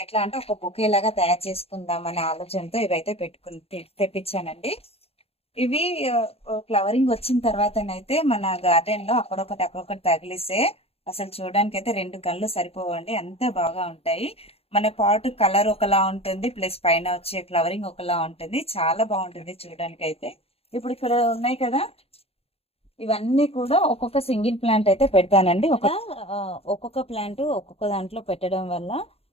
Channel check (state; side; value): late; right; 0.29 ms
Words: ఎట్లా అంటే ఒక బొకే లాగా తయారు చేసుకుందాం అనే ఆలోచనతో ఇవైతే తెప్పించానండి. ఇవి ఫ్లవరింగ్ వచ్చిన తర్వాతనైతే మన గార్డెన్ లో అక్కడొకటి తగిలిస్తే అసలు చూడడానికి అయితే 2 కళ్ళు సరిపోవండి, అంత బాగా ఉంటాయి. మన పాట్ కలర్ ఒకలా ఉంటుంది, ప్లస్ పైన వచ్చే ఫ్లవరింగ్ ఒకలా ఉంటుంది, చాలా బాగుంటుంది చూడడానికి అయితే. ఇప్పుడు ఇక్కడ ఉన్నాయి కదా, ఇవన్నీ కూడా ఒక్కొక్క సింగిల్ ప్లాంట్ అయితే పెడతానండి. ఒక్కొక్క ప్లాంట్ ఒక్కొక్క దాంట్లో పెట్టడం వల్ల